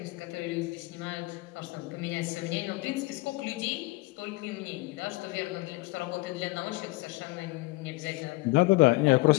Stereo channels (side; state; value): right; quieter; 22.3 dB